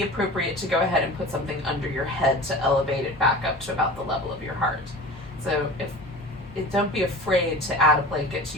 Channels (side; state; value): both; normal; correlation 0.36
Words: appropriate to go ahead and put something under your head to elevate it back up to about the level of your heart. So don't be afraid to add a blanket to